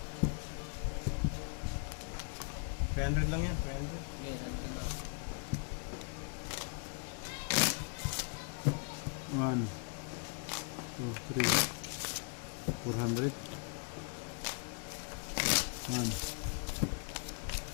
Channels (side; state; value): right; quieter; 39.8 dB